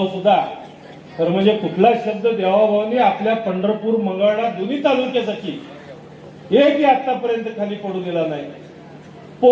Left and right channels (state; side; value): identical; both; correlation 1.00